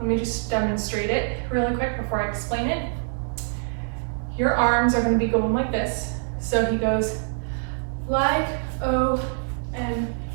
me just demonstrate it really quick before I explain it. Your arms are gonna be going like this. So he goes, like OMG.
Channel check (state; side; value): silent; left; 62 dB below the other